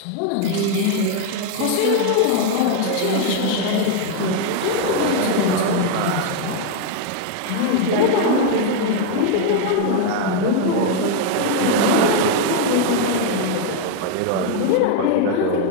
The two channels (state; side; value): different; both; correlation 0.00